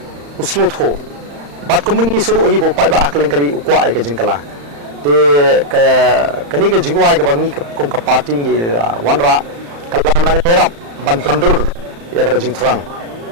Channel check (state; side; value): late; left; 35 ms